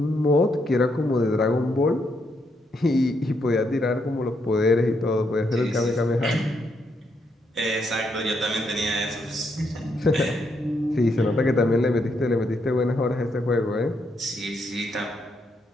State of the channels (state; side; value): normal; both; correlation 0.77